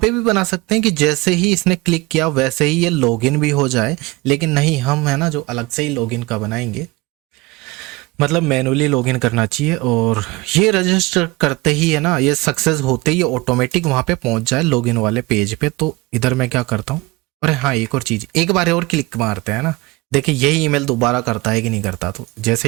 भी बना सकते हैं कि जैसे ही इसने क्लिक किया वैसे ही ये लॉगिन भी हो जाए, लेकिन नहीं, हम है ना जो अलग से ही लॉगिन का बनाएंगे, मतलब मैनुअली लॉगिन करना चाहिए। और ये रजिस्टर करते ही है ना, ये सक्सेस होते ही ऑटोमेटिक वहाँ पे पहुँच जाए लॉगिन वाले पेज पे। तो इधर मैं क्या करता हूँ, अरे हाँ एक और चीज़, एक बार और क्लिक मारते हैं ना, देखिए यही ईमेल दोबारा करता है कि नहीं करता। तो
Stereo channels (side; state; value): left; quieter; 21.7 dB